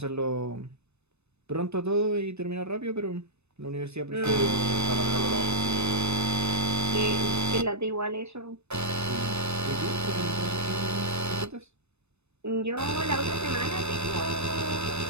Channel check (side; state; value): left; late; 0.81 ms